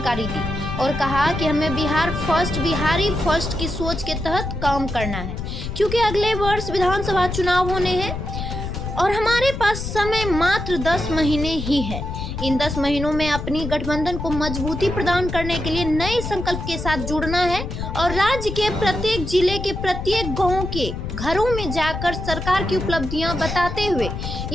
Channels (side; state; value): left; noise; rumble, 6 dB below the sound